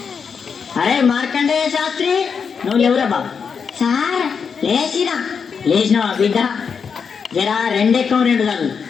అరే మార్కండేయ శాస్త్రి, నువ్వు ఎవరా బాబు? సార్ లేచినావా బిడ్డ? జరా రెండెక్కం రెండు చదువు.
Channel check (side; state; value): right; quieter; 6.2 dB